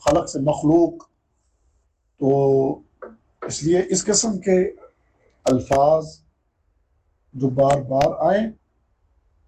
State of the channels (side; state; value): both; identical; correlation 1.00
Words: خلق سے مخلوق۔ تو اس لیے اس قسم کے الفاظ جو بار بار آئیں